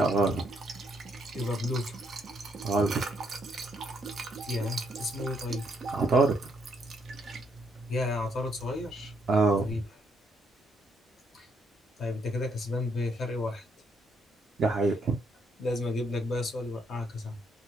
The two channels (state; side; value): normal; both; correlation 0.73